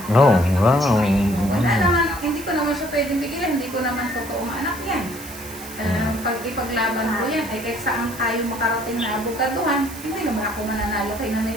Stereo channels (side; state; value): right; noise; hiss, 14 dB below the sound